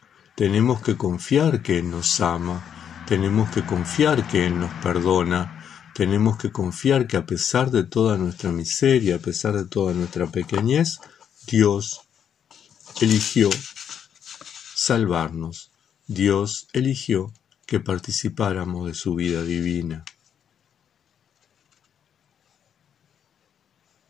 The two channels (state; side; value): quieter; right; 8.5 dB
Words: Tenemos que confiar que Él nos ama, tenemos que confiar que Él nos perdona, tenemos que confiar que a pesar de toda nuestra miseria, a pesar de toda nuestra pequeñez, Dios eligió salvarnos. Dios eligió que participáramos de su vida divina.